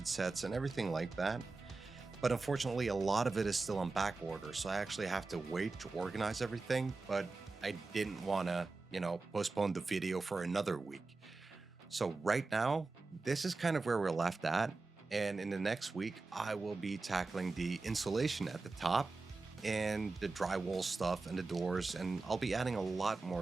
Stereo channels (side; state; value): left; quieter; 3.7 dB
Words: sets and everything like that. But unfortunately, a lot of it is still on back order, so I actually have to wait to organize everything. But I didn't want to, postpone the video for another week. So right now, this is kind of where we're left at. And in the next week, I will be tackling the insulation at the top and the drywall stuff and the doors, and I'll be adding a lot